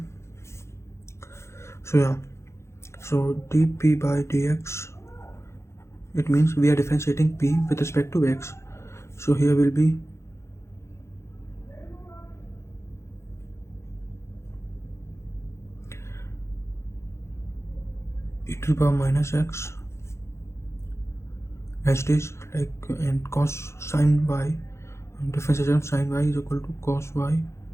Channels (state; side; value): late; right; 0.13 ms